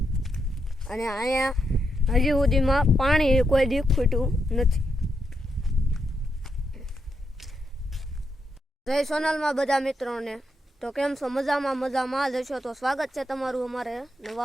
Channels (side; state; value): both; normal; correlation 0.82